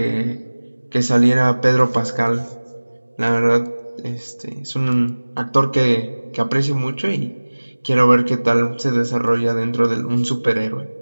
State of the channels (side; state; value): both; inverted; correlation -1.00